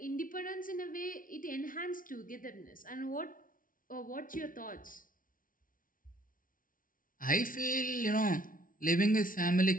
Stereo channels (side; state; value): right; late; 0.39 ms